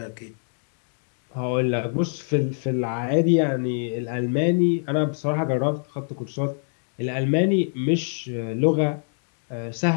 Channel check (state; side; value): silent; right; 62 dB below the other